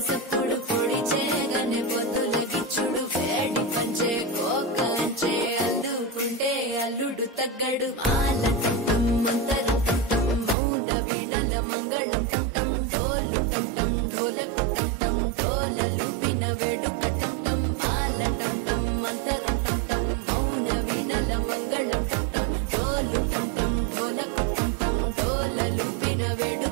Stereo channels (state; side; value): drops out; left; at 10.6 s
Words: సప్పుడు పొడి చేయగానే పొద్దులకిచ్చుడు వేడి పంచే కోకలంచే అల్లుకుంటే అల్లుడు తగ్గడు మాల టంటం మంతరం టంటం మౌన వీణల మంగళం టంటం డోలు టంటం డోలకు టంటం డోలలు విన వేడుక టంటం మాల టంటం మంతరం టంటం మౌన వీణల మంగళం టంటం డోలు టంటం డోలకు టంటం డోలలు విన వేడుక